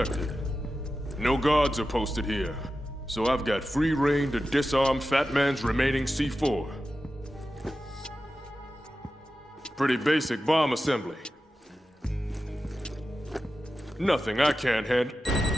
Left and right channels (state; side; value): normal; both; correlation 0.93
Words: No guards are posted here, so I've got free reign to disarm Fat Man's remaining C4. Pretty basic bomb assembly. Nothing I can't handle.